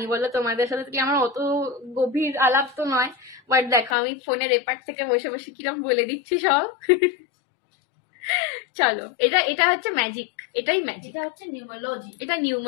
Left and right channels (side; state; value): right; drops out; at 4.0 s